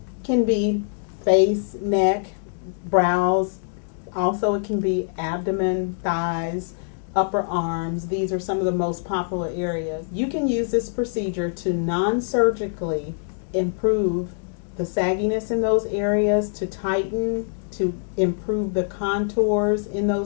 can be face, neck, brows, also it can be abdomen, thighs, upper arms. These are some of the most popular areas. You can use this procedure to non-surgically improve the sagginess in those areas, to tighten, to improve the contours in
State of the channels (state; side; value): silent; right; digital silence